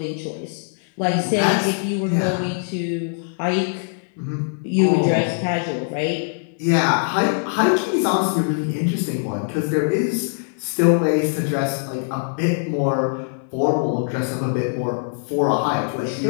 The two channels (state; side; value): silent; right; digital silence